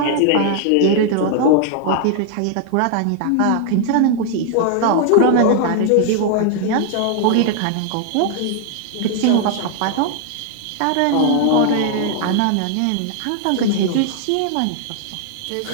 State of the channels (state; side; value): different; both; correlation 0.00